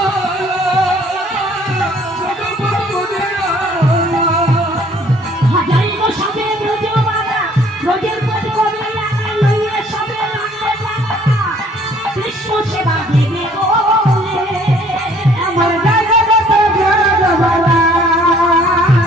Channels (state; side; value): normal; both; correlation 0.58